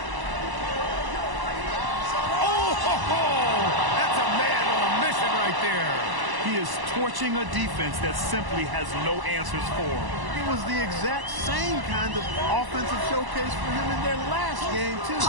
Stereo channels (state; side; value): late; left; 1.0 ms